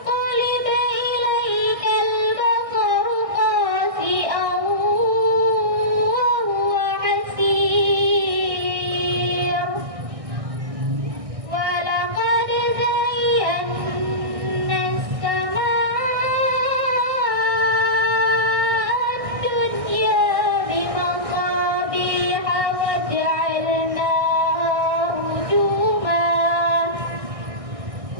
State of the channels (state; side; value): late; left; 1.6 ms